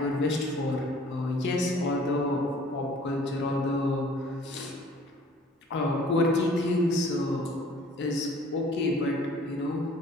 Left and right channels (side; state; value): both; normal; correlation 0.53